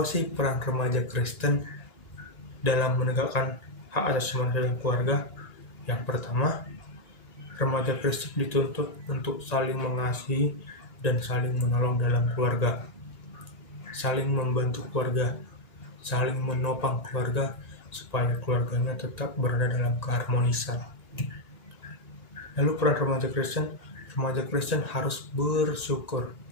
sih peran remaja Kristen dalam menegakkan hak asasi manusia dan keluarga? Yang pertama, remaja Kristen dituntut untuk saling mengasihi dan saling menolong dalam keluarga, saling membantu keluarga, saling menopang keluarga, supaya keluarganya tetap berada dalam keharmonisan. Lalu peran remaja Kristen harus bersyukur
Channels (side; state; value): right; late; 2.8 ms